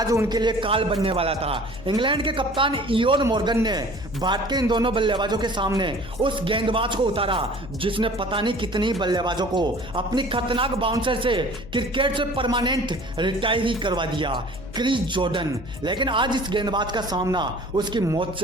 उनके लिए काल बनने वाला था। इंग्लैंड के कप्तान इयोन मॉर्गन ने भारत के इन दोनों बल्लेबाजों के सामने उस गेंदबाज को उतारा जिसने पता नहीं कितनी बल्लेबाजों को अपनी खतरनाक बाउंसर से क्रिकेट से परमानेंट रिटायर ही करवा दिया, क्रिस जॉर्डन। लेकिन आज इस गेंदबाज का सामना उसकी मौत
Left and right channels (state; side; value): noise; left; hum, 15 dB below the sound